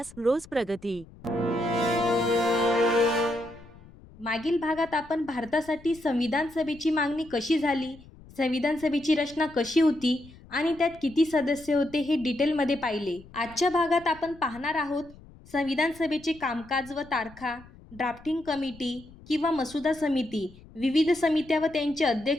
रोज प्रगती. मागील भागात आपण भारतासाठी संविधान सभेची मागणी कशी झाली, संविधान सभेची रचना कशी होती आणि त्यात किती सदस्य होते हे डिटेलमध्ये पाहिले. आजच्या भागात आपण पाहणार आहोत संविधान सभेचे कामकाज व तारखा, ड्राफ्टिंग कमिटी किंवा मसुदा समिती, विविध समित्या व त्यांचे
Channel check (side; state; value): left; noise; rumble, 21 dB below the sound